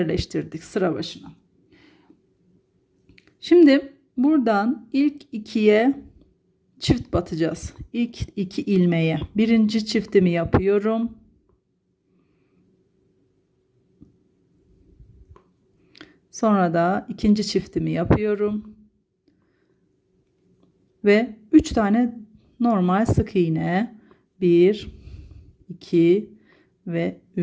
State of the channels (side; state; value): both; identical; correlation 1.00